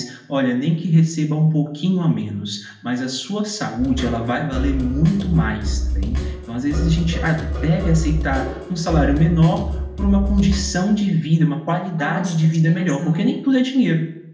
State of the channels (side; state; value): both; identical; correlation 1.00